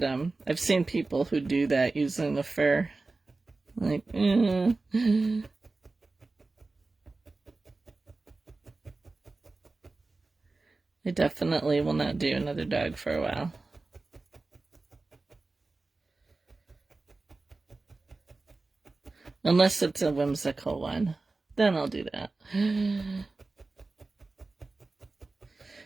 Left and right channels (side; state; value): left; quieter; 3.5 dB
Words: I've seen people who do that using the fur. Like, I definitely will not do another dog for a while. Unless it's a whimsical one. Then I'll do that.